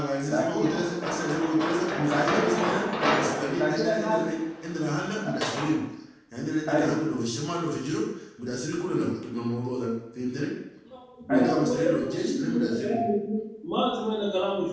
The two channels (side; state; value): both; identical; correlation 1.00